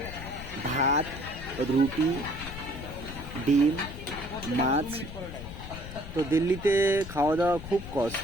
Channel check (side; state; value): left; noise; rumble, 11 dB below the sound